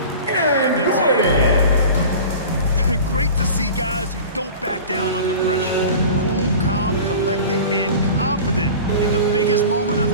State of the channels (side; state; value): both; inverted; correlation -0.37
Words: And it's in. Great to see guys who don't back down under pressure. Cool, calm, collected, and confident in the biggest moment of